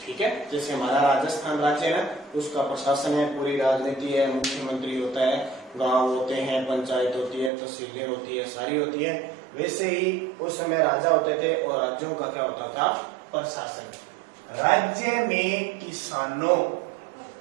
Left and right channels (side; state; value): left; drops out; at 7.5 s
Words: ठीक है, जैसे हमारा राजस्थान राज्य है ना, उसका प्रशासन है, पूरी राजनीति है, मुख्यमंत्री होता है, गांव होते हैं, पंचायत होती है, तहसीलें होती है, सारी होती है। वैसे ही उस समय राजा होते थे और राज्यों का क्या होता था? प्रशासन। राज्य में किसानों,